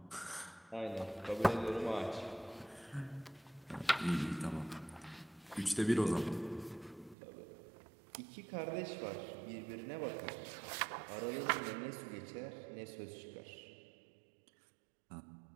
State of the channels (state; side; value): drops out; left; at 7.2 s